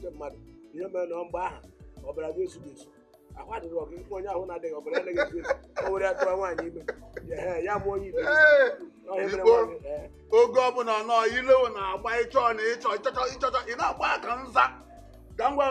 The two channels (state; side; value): identical; both; correlation 1.00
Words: mmadụ ihe mere na mgbe aha ọbara gị esu esu ahụ adịghị ọgụ onye ahụ na-adịghị ọbara anaghị esu esu o were atụrụ nwaanyị ime ya mụọ onye ibe oge ọbụla nọ ilewo na-agba ịchọ na ịchọchọ ị na-agba aka nza ka ngwa